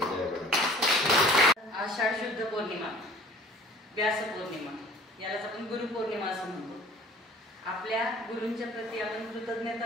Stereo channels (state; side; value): normal; both; correlation 0.50